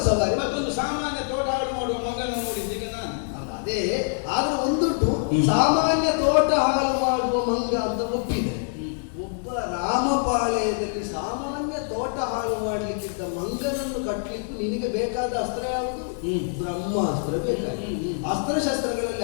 ಸವಾರಿ ಮತ್ತೊಂದು ಸಾಮಾನ್ಯ ತೋಟ ಹಾಳು ಮಾಡುವ ಮಗನ ನೋಡಿದ್ದೀಗ ನಾನು. ಅದೇ ಆದ್ರೆ ಒಂದುಂಟು, ಸಾಮಾನ್ಯ ತೋಟ ಹಾಳು ಮಾಡುವ ಮಂಗ ಅಂತ ಒಪ್ಪಿದೆ. ಒಬ್ಬ ರಾಮಪಾಳೆಯದಲ್ಲಿ ಸಾಮಾನ್ಯ ತೋಟ ಹಾಳು ಮಾಡ್ಲಿಕ್ಕಿದ್ದ ಮಂಗನನ್ನು ಕಟ್ಟಲಿಕ್ಕೂ ನಿನಗೆ ಬೇಕಾದ ಅಸ್ತ್ರ ಯಾವುದು? ಬ್ರಹ್ಮಾಸ್ತ್ರ ಬೇಕಾಗಿದೆ.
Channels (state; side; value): silent; right; digital silence